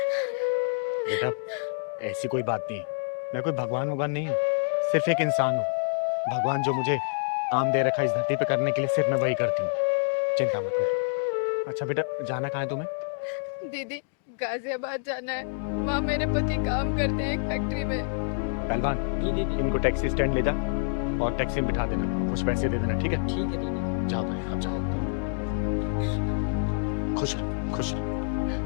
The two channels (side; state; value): right; silent; digital silence